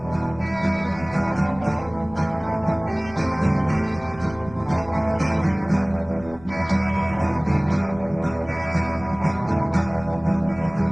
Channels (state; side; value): noise; left; rumble, 19 dB below the sound